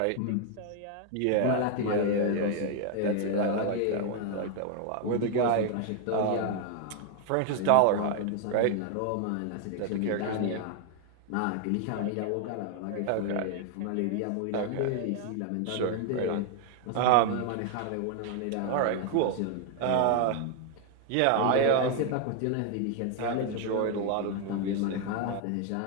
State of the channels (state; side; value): different; both; correlation 0.00